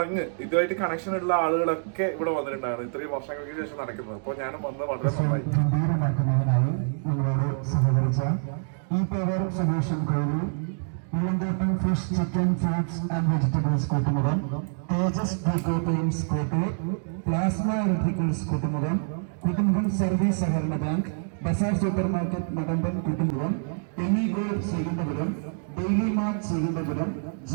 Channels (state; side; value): silent; left; digital silence